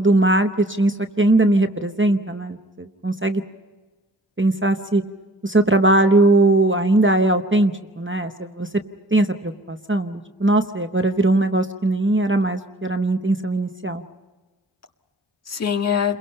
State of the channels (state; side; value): normal; both; correlation 0.51